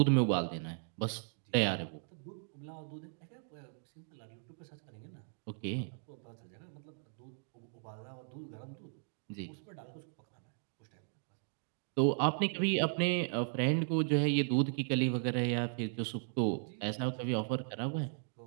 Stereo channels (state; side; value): silent; left; digital silence